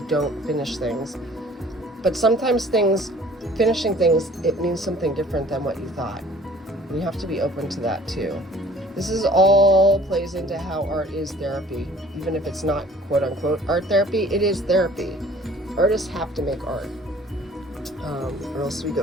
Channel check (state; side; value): normal; both; correlation 0.52